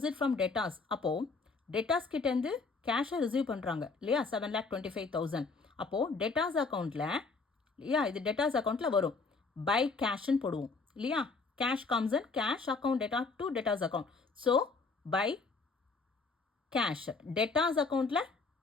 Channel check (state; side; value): quieter; right; 4.2 dB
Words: from debtors. அப்போது டேட்டாஸ் கிட்டேருந்து கேஷை ரிசீவ் பண்ணுறாங்க இல்லையா, 7,25,000. அப்போது டேட்டாஸ் அக்கௌண்ட்டில் இல்லையா, இது டேட்டாஸ் அக்கௌண்ட்டில் வரும். பை கேஷ்ன்னு போடுவோம் இல்லையா. Cash comes in cash account debtor to debtors account. So by cash debtors அக்கௌண்ட்டில்